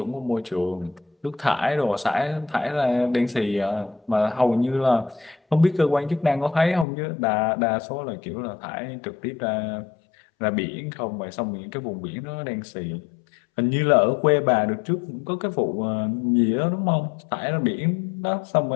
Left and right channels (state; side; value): drops out; right; at 6.9 s